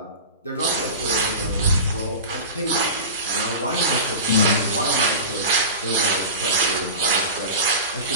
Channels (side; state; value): both; inverted; correlation -0.31